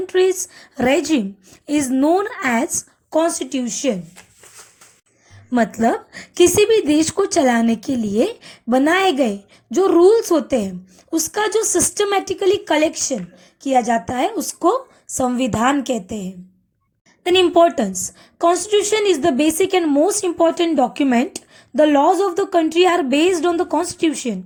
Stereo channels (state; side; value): identical; both; correlation 1.00